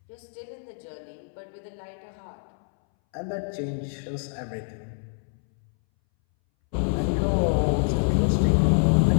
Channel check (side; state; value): right; silent; 61 dB below the other